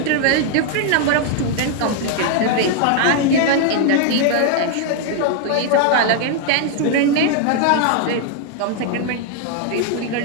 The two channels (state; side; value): different; both; correlation 0.00